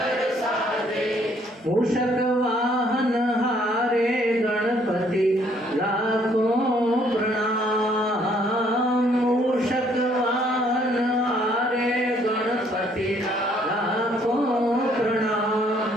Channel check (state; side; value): normal; both; correlation 0.65